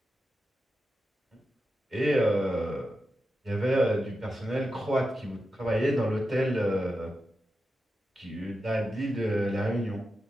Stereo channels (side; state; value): both; normal; correlation 0.90